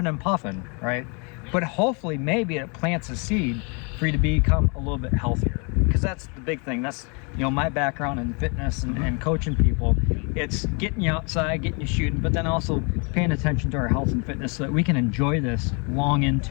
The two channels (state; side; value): quieter; right; 34.0 dB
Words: and puffing, right? But hopefully maybe it plants a seed for you to become a little bit healthier, because that's the big thing. That's my background in fitness and coaching people. It's getting you outside, getting you shooting, but then also paying attention to our health and fitness so that we can enjoy this long